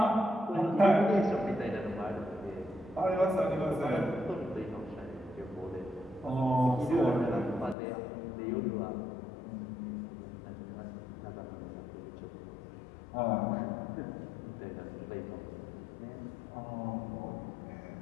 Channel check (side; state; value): right; drops out; at 7.8 s